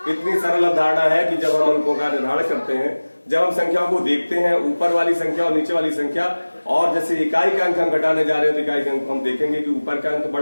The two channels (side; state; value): both; inverted; correlation -1.00